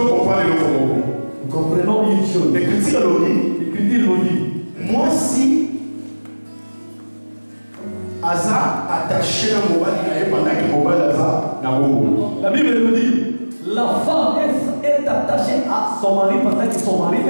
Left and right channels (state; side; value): inverted; both; correlation -1.00